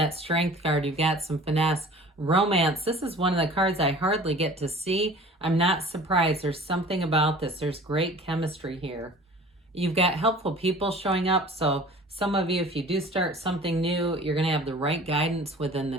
Strength card, you've got some finesse. Romance, this is one of the cards I hardly get to see. I'm not surprised. There's something about this. There's great chemistry here. You've got helpful people showing up. So some of you, if you do start something new, you're going to have the right guidance within the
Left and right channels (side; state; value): both; normal; correlation 0.45